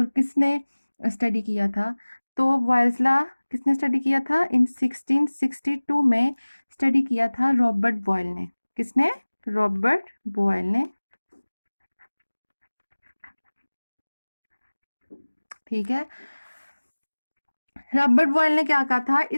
किसने स्टडी किया था। तो बॉयल्स लॉ किसने स्टडी किया था? इन 1662 में स्टडी किया था रॉबर्ट बॉयल ने। किसने? रॉबर्ट बॉयल ने। ठीक है, रॉबर्ट बॉयल ने क्या कहा था?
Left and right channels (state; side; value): inverted; both; correlation -1.00